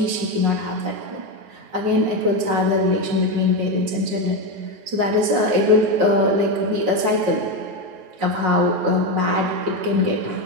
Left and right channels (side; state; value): left; late; 9.5 ms